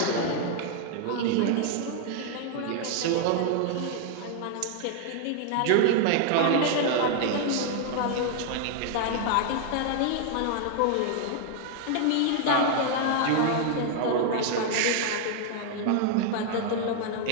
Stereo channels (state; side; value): different; both; correlation 0.00